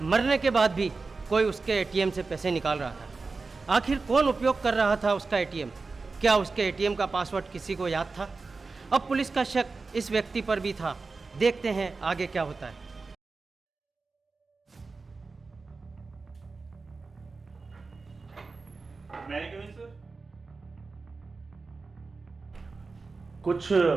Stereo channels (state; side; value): quieter; left; 4.1 dB